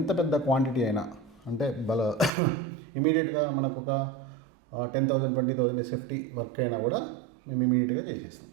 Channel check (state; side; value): drops out; left; at 2.3 s